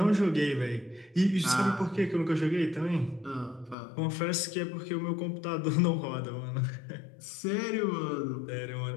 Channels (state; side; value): drops out; right; at 3.8 s